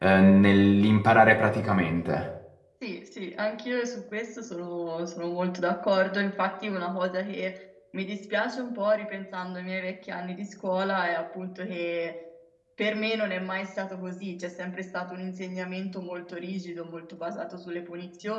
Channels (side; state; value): both; identical; correlation 1.00